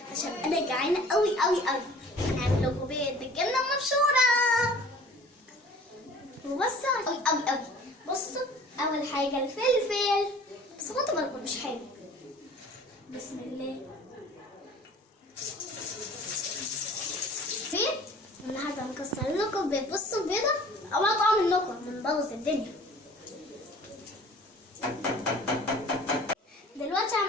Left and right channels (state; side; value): normal; both; correlation 0.48